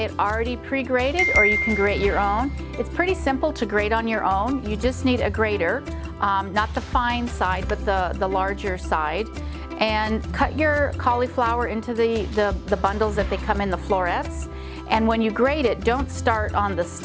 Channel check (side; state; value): both; identical; correlation 1.00